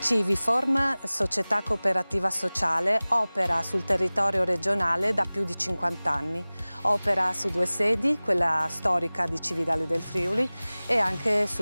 Civiform, società cooperativa sociale, opera sul territorio regionale da più di 50 anni. Opera su 2 sedi, quella storica di Cividale del Friuli e anche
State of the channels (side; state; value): both; inverted; correlation -0.99